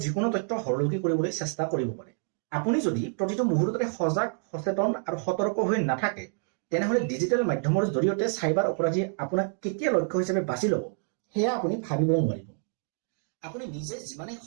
যিকোনো তথ্য হৰলুকি কৰিবলৈ চেষ্টা কৰিব পাৰে। আপুনি যদি প্ৰতিটো মুহূৰ্ততে সজাগ, সচেতন আৰু সতৰ্ক হৈ নাথাকে তেনেহ'লে ডিজিটেল মাধ্যমৰ জৰিয়তে চাইবাৰ অপৰাধীয়ে আপোনাক কেতিয়া লক্ষ্য হিচাপে বাছি ল'ব সেয়া আপুনি ভাবিবও নোৱাৰিব। আপুনি নিজে যিমানেই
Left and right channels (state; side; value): silent; left; 59 dB below the other